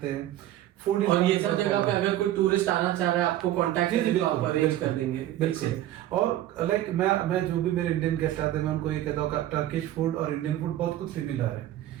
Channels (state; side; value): quieter; left; 13.4 dB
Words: हैं। फूड और ये सब जगह पे अगर कोई टूरिस्ट आना चाह रहा है आपको कांटेक्ट करें तो आप अरेंज कर देंगे। बिल्कुल। और लाइक मैं जो भी मेरे इंडियन गेस्ट आते हैं मैं उनको ये कहता हूँ टर्किश फूड और इंडियन फूड बहुत कुछ सिमिलर है।